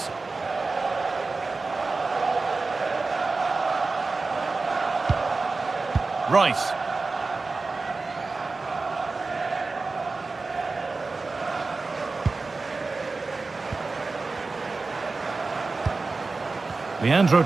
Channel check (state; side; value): quieter; left; 3.8 dB